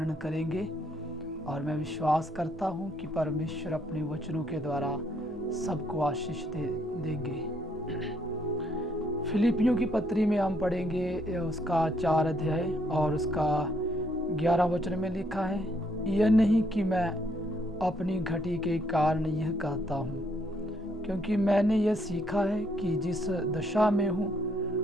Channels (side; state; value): both; normal; correlation 0.70